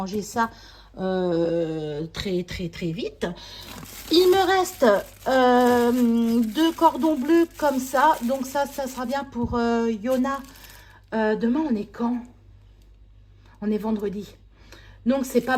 ça très vite. Il me reste 2 cordons bleus comme ça. Donc ça sera bien pour Yona. Demain, on est quand? On est vendredi. Donc c'est pas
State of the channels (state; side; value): identical; both; correlation 1.00